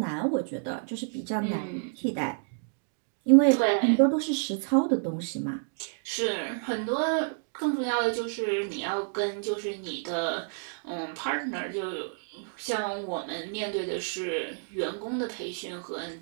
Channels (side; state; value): left; silent; digital silence